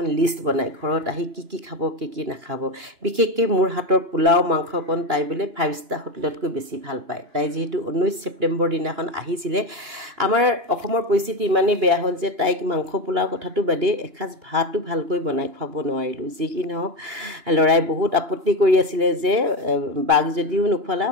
লিষ্ট বনাই ঘৰত আহি কি খাব কি নাখাব বিশেষকৈ মোৰ হাতৰ পোলাও মাংসকণ তাই বোলে 5 ষ্টাৰ হোটেলতকৈ বেছি ভাল পায় তাই যেহেতু 19 ছেপ্টেম্বৰ দিনাখন আহিছিলে আমাৰ অসমৰ পৰিস্থিতি ইমানেই বেয়া হ'ল যে তাইক মাংস পোলাও কথাটো বাদে এসাঁজ ভাতো ভালকৈ বনাই খুৱাব নোৱাৰিলোঁ যি কি নহওক লৰাই বহুত আপত্তি কৰি আছিলে যে বাঘ যদিও নোখোৱালা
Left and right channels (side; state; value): left; late; 2.9 ms